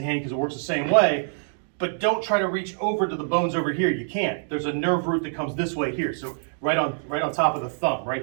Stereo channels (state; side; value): silent; left; digital silence